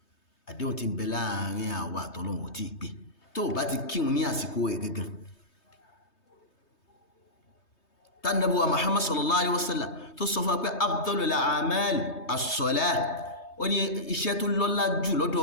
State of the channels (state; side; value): late; right; 3.2 ms